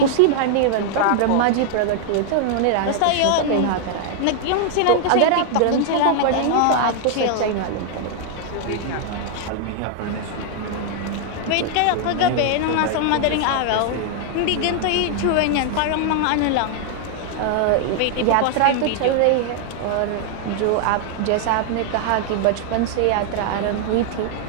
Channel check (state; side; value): different; both; correlation 0.00